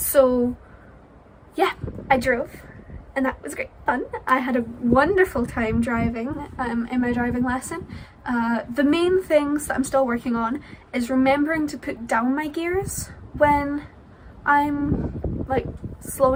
yeah, I drove, and that was great fun. I had a wonderful time driving in my driving lesson. The main things that I'm still working on is remembering to put down my gears when I'm like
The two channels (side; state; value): both; identical; correlation 1.00